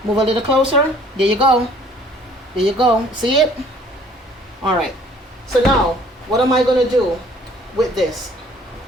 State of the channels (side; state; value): both; normal; correlation 0.56